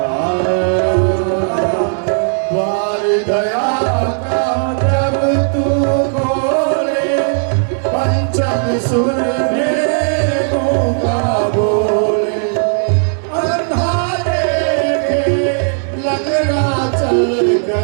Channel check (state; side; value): silent; left; digital silence